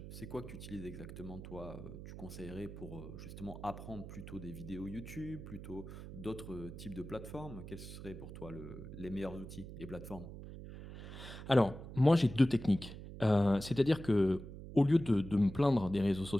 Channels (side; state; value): right; noise; hum, 12 dB below the sound